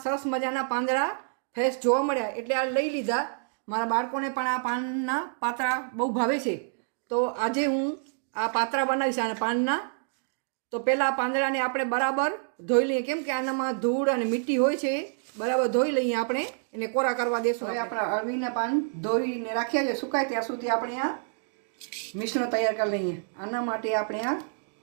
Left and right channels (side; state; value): left; silent; digital silence